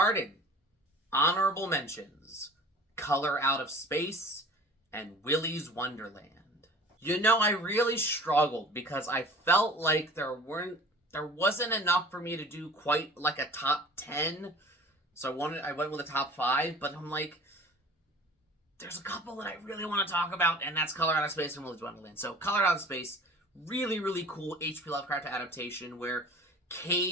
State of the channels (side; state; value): both; normal; correlation 0.43